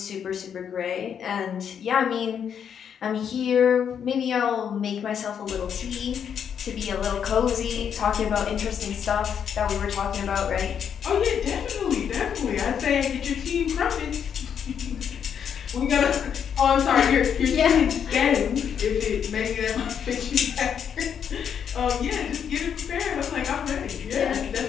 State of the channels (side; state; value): right; quieter; 8.0 dB